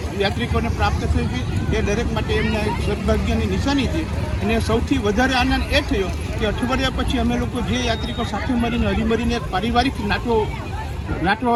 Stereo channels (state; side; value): identical; both; correlation 1.00